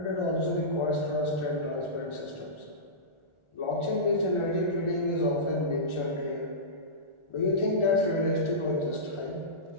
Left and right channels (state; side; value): late; right; 1.4 ms